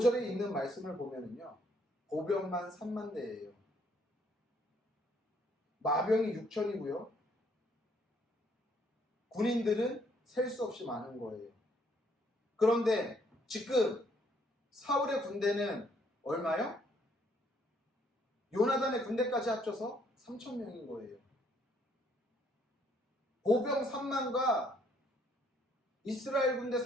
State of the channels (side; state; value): both; normal; correlation 0.67